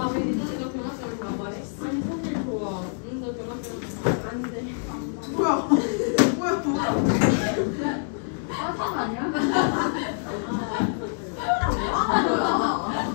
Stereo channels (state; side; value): silent; right; 61 dB below the other